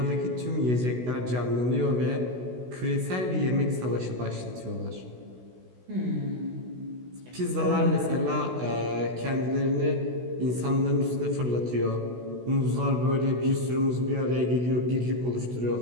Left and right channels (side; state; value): left; late; 16 ms